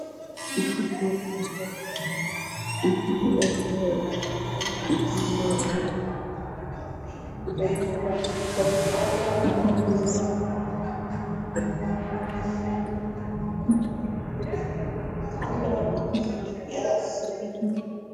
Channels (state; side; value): identical; both; correlation 1.00